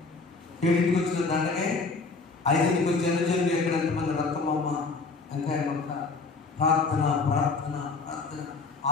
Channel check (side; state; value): right; quieter; 4.1 dB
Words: 7కి వచ్చిన దండగే 5కి వచ్చి అనుజనులు ఎక్కడ ఎంతమంది రక్తమమ్మ వెంకాయ మొక్క ప్రార్థన ప్రార్థన ప్రార్థన